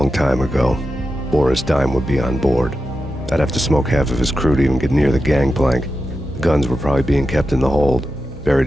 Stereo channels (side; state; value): both; normal; correlation 0.90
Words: time ago. Boris Dime would be on board. I'd have to smoke half of his crew to even get near the gangplank. The guns were probably being kept in the hold, buried